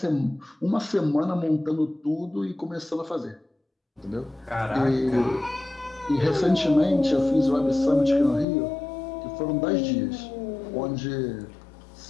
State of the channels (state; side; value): drops out; right; at 8.5 s